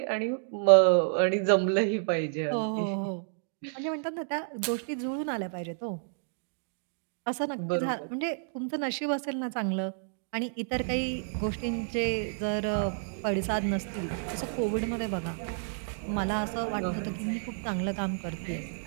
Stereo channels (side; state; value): left; silent; digital silence